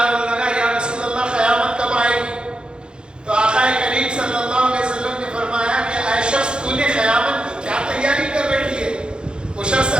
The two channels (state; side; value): late; left; 0.051 ms